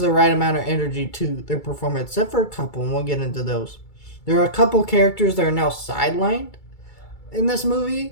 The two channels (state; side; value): late; right; 2.3 ms